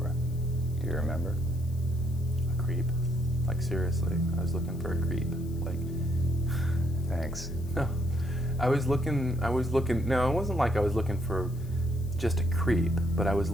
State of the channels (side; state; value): left; noise; hiss, 24 dB below the sound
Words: Do you remember? A creep. Like seriously, I was looking for a creep. Like, Thanks. no. No, it wasn't like I was looking for just a creep, but I was